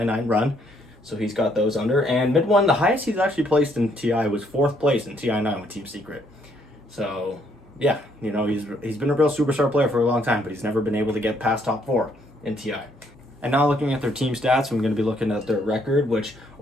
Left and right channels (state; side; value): normal; both; correlation 0.69